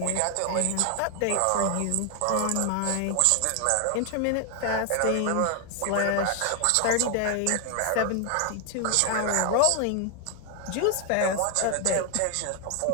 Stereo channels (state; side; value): different; both; correlation 0.00